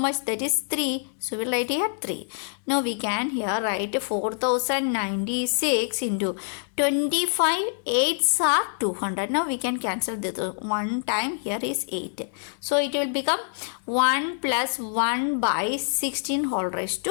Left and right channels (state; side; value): silent; right; digital silence